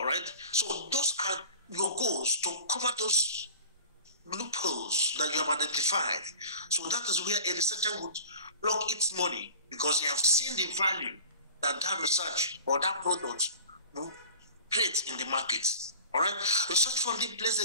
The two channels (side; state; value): both; inverted; correlation -0.41